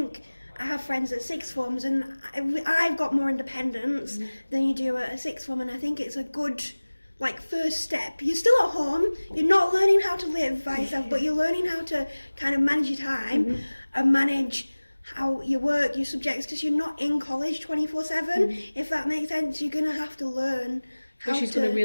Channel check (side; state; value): both; inverted; correlation -1.00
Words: I have friends at sixth forms, and I've got more independence than you do at a sixth form, and I think it's a good first step. You're still at home, you're not learning how to live by yourself, but you're learning how to kind of manage your time and manage how you work, your subjects, because you're not in college 24/7, if that makes sense. You're going to have to learn how which is to... going to